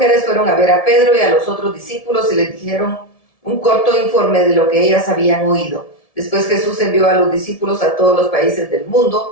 fueron a ver a Pedro y a los otros discípulos y les dijeron un corto informe de lo que ellas habían oído. Después Jesús envió a los discípulos a todos los países del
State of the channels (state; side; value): late; right; 1.7 ms